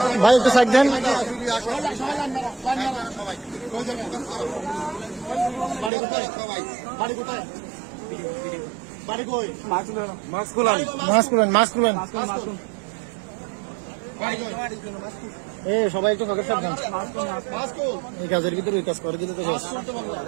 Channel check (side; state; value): left; drops out; at 5.9 s